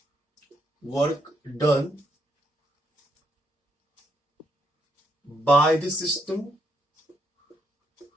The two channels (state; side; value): normal; both; correlation 0.76